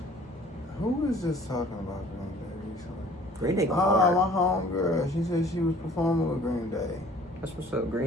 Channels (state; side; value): normal; both; correlation 0.52